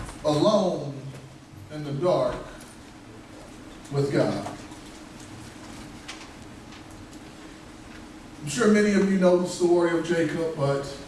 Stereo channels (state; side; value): identical; both; correlation 1.00